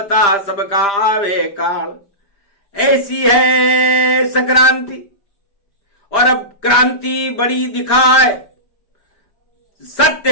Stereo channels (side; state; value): right; late; 5.0 ms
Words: सबका आवे काल। ऐसी है संक्रांति। और अब क्रांति बड़ी दिखाए, सत्य